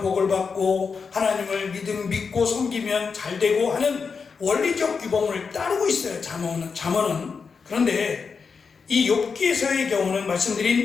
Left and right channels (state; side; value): quieter; right; 5.4 dB